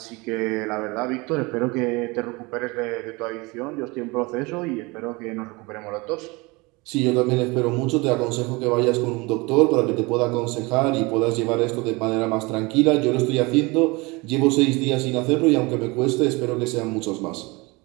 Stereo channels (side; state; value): left; quieter; 25.2 dB